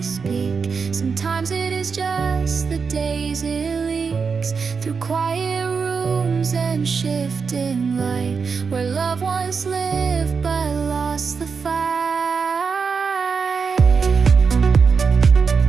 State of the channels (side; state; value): left; quieter; 5.4 dB